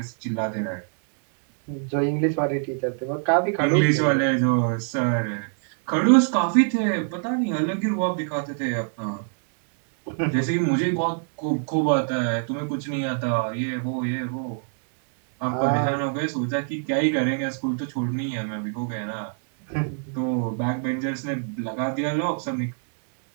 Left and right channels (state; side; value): silent; left; 61 dB below the other